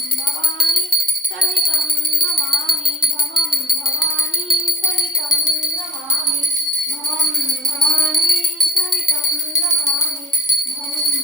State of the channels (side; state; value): both; normal; correlation 0.48